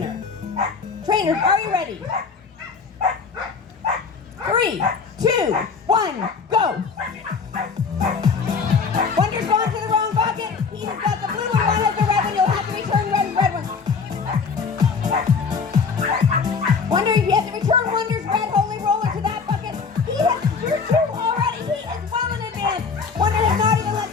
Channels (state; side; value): quieter; right; 5.3 dB